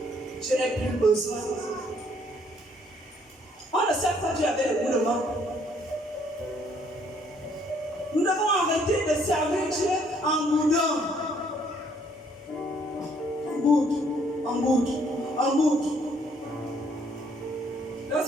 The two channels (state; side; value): normal; both; correlation 0.65